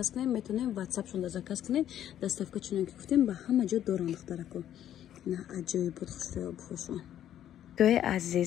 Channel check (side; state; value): right; quieter; 11.1 dB